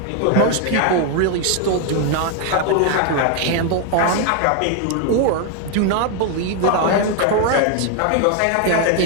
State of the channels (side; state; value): both; different; correlation 0.01